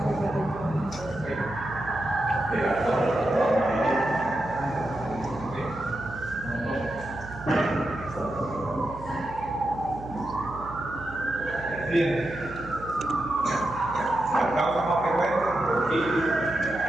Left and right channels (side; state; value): right; noise; hum, 14 dB below the sound